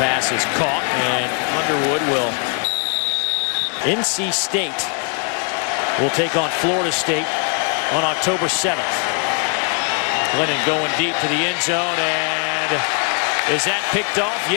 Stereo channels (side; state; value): right; quieter; 37.4 dB